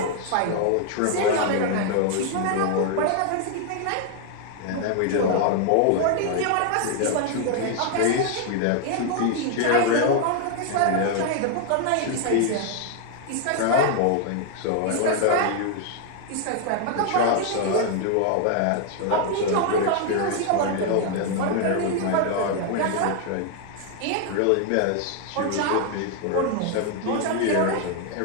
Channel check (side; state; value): both; different; correlation 0.00